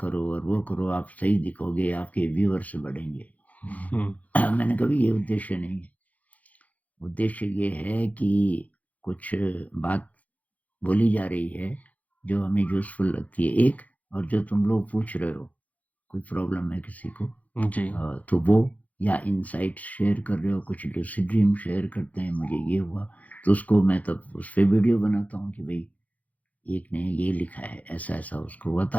करो और वो करो, आप सही दिखोगे, आपके व्यूअर्स बढ़ेंगे। हुँ, मैंने कहा ये उद्देश्य नहीं है। उद्देश्य ये है कि कुछ बात बोली जा रही है जो हमें यूज़फुल लगती है एक, और जो तुम लोग पूछ रहे हो, कोई प्रॉब्लम है किसी को, जी, तो वो, या इनसाइट्स शेयर कर रहे हो, कुछ लूसिड ड्रीम शेयर करते हैं, मुझे ये हुआ, तो उसको मैं तब उस पे वीडियो बनाता हूँ कि भई एक ने ये लिखा है, ऐसा-ऐसा उसको हुआ,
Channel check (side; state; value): right; late; 0.073 ms